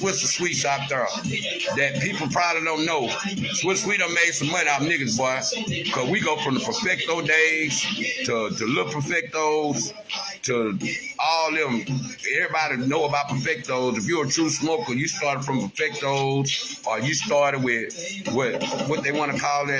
and Sweets out there that people probably don't know. Swiss Sweet done made some money out of niggas, boy, cause we go from the Perfecto days to Little Perfectos to all them. Everybody know about Perfectos. If you're a true smoker, you started from Perfectos, or you started with what they want to call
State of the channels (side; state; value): both; identical; correlation 1.00